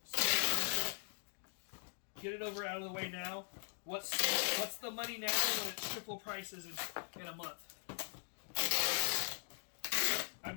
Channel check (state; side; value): silent; right; digital silence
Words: So, get it over out of the way now. What's the money now when it's triple prices in a month? I